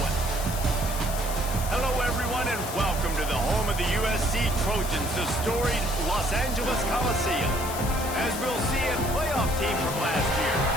Hello, everyone, and welcome to the home of the USC Trojans, the storied Los Angeles Coliseum. As we'll see a playoff team from last year,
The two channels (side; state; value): left; noise; hiss, 9 dB below the sound